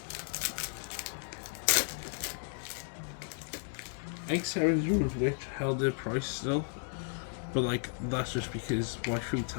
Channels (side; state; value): right; silent; 55 dB below the other